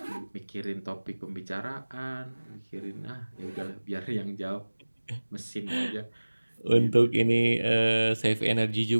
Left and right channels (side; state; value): both; inverted; correlation -1.00